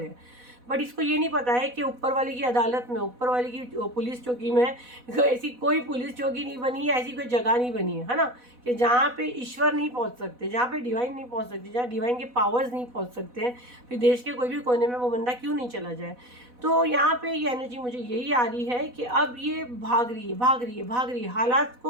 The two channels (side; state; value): left; late; 4.1 ms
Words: हैं, बट इसको ये नहीं पता है कि ऊपर वाले की अदालत में, ऊपर वाले की पुलिस चौकी में ऐसी कोई पुलिस चौकी नहीं बनी है, ऐसी कोई जगह नहीं बनी है ना, कि जहाँ पे ईश्वर नहीं पहुँच सकते, जहाँ पे डिवाइन नहीं पहुँच सकते, जहाँ डिवाइन के पावर्स नहीं पहुँच सकते हैं। फिर देश के कोई भी कोने में वो बंदा क्यों नहीं चला जाए। तो यहाँ पे ये एनर्जी मुझे यही आ रही है कि अब ये भाग रही है, हालात